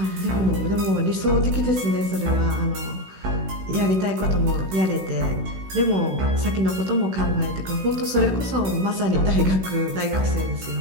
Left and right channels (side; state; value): left; late; 16 ms